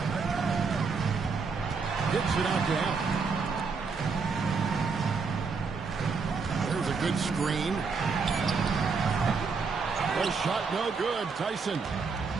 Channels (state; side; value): quieter; left; 4.9 dB